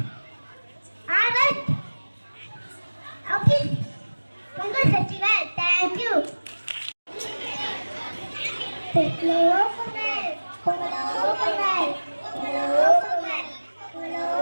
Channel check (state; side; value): inverted; both; correlation -1.00